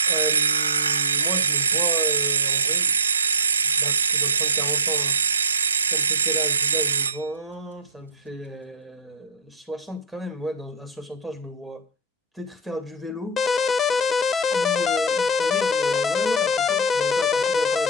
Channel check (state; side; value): normal; both; correlation -0.14